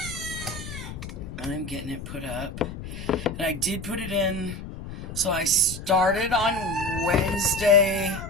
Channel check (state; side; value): noise; left; rumble, 10 dB below the sound